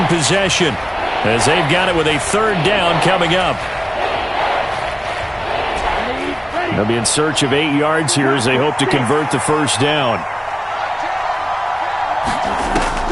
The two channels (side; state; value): both; identical; correlation 1.00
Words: possession as they've got it with a 3rd down coming up. They'll be in search of 8 yards here as they hope to convert the first down.